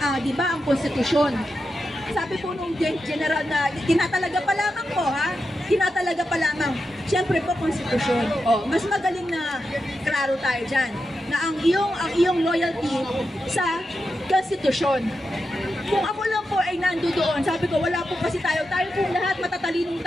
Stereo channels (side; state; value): both; normal; correlation 0.88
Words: Di ba ang konstitusyon? Sabi po nung general na tinatalaga pa lamang po tinatalaga pa lamang. Siyempre po konstitusyon. Mas magaling na klaro tayo dyan na ang iyong loyalty sa konstitusyon. Kung ako lang po ay nandoon, sabi ko wala po kasi tayo pong lahat matatalinong